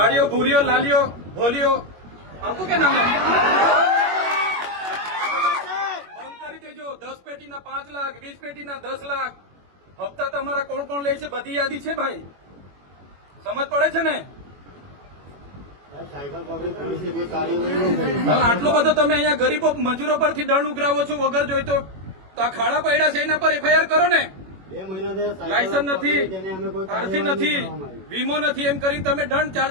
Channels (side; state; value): left; late; 21 ms